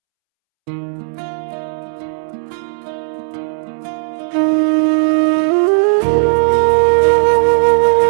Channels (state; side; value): silent; left; 70 dB below the other